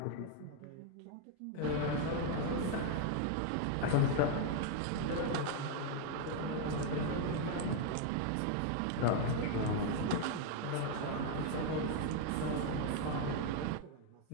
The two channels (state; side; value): different; both; correlation 0.01